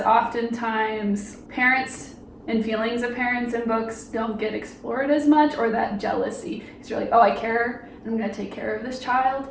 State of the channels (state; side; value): identical; both; correlation 1.00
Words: oftentimes parents and feelings of parents in books don't get explored as much, or that jealousy. Because you're like, oh, I care, and I'm going to take care of this child.